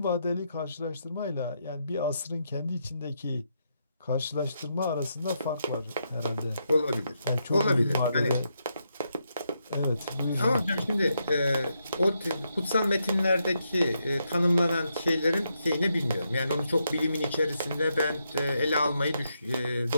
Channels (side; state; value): both; inverted; correlation -0.81